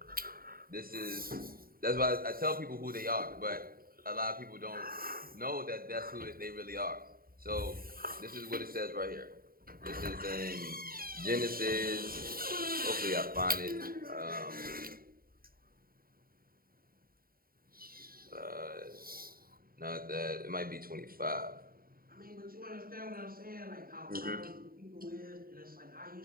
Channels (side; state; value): left; late; 0.43 ms